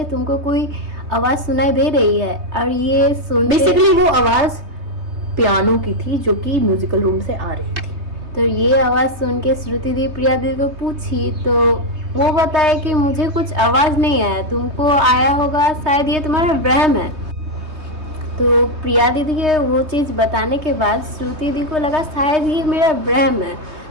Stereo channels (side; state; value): left; late; 3.2 ms